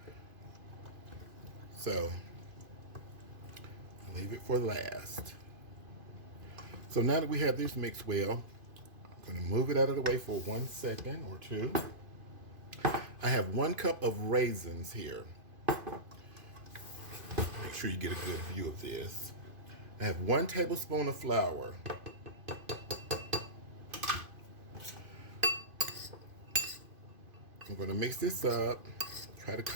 So, I'll leave it for last. So now that we have this mixed well, I'm going to move it out of the way for 1 second or two. I have 1 cup of raisins here. Make sure you get a good view of this. I have 1 tablespoon of flour. I'm going to mix this up. Try to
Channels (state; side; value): late; left; 2.5 ms